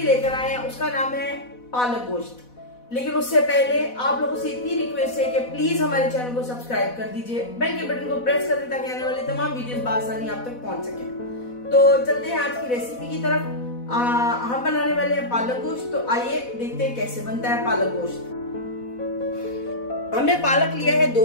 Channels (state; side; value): late; right; 4.1 ms